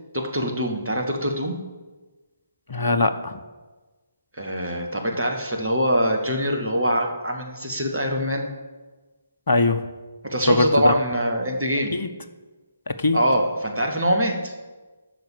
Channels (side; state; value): both; inverted; correlation -0.73